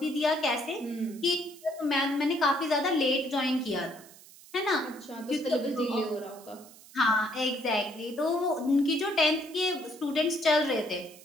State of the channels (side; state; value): right; noise; hiss, 21 dB below the sound